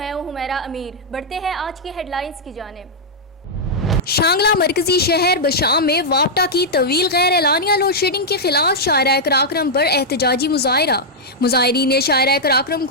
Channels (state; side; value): normal; both; correlation -0.06